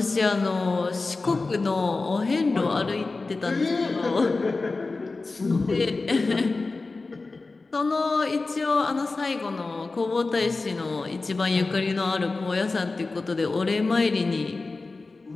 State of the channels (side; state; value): right; quieter; 3.7 dB